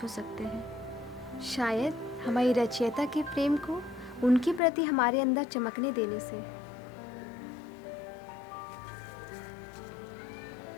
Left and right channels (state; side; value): drops out; right; at 4.6 s